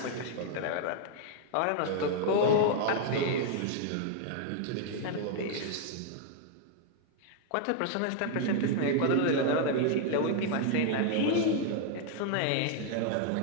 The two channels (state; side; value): different; both; correlation 0.00